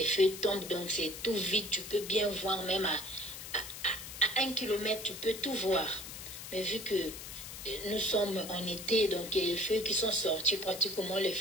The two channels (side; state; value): left; noise; hiss, 10 dB below the sound